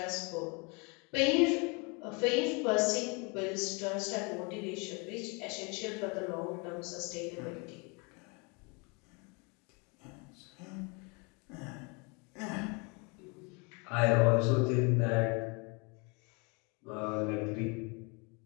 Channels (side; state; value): right; quieter; 31.5 dB